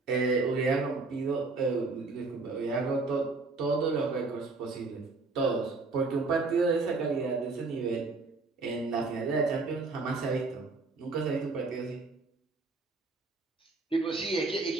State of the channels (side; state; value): left; quieter; 3.7 dB